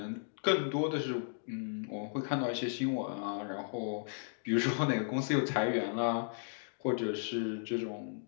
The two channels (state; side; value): silent; right; digital silence